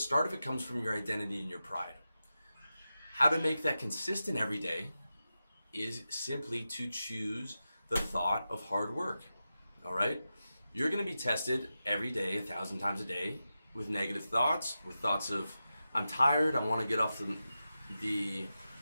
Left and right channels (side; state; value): both; inverted; correlation -0.91